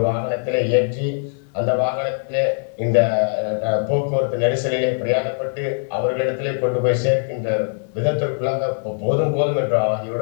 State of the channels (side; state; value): right; silent; digital silence